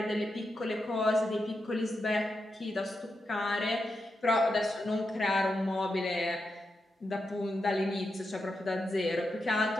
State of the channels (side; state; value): both; normal; correlation 0.87